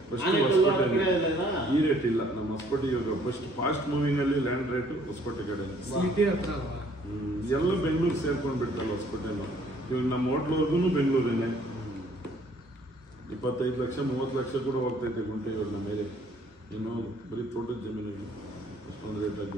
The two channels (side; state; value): both; normal; correlation 0.60